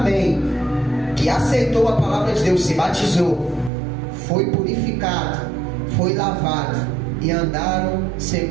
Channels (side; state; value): left; drops out; at 3.7 s